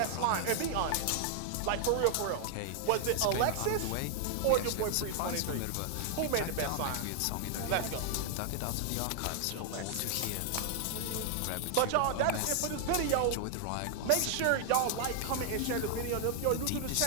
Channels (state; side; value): different; both; correlation 0.00